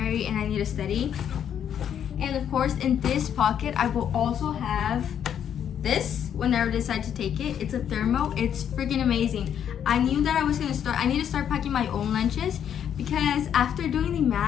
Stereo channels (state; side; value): quieter; right; 9.1 dB